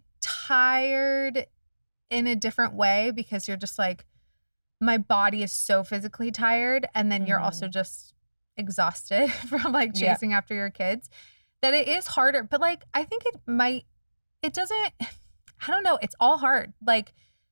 tired in a different way, because you're just like, my body is so physically tired. And then you're also just exhausted from like chasing after your kids, that it is harder. But like, I think it doesn't, I don't know. It's all hard. Like,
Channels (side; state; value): both; inverted; correlation -1.00